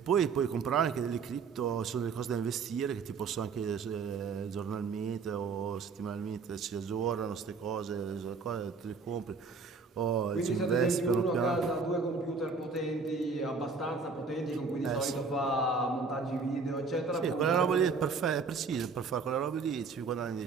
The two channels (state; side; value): quieter; left; 4.8 dB